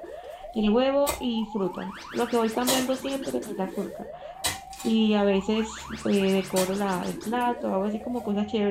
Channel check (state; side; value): identical; both; correlation 1.00